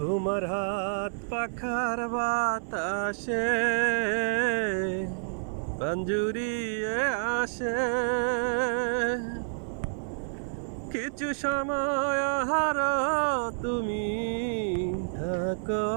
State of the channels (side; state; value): left; silent; digital silence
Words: হাত পাখার বাতাসে পাঞ্জুরিয়ে আসে, কিছু সময় আহারো তুমি থাকো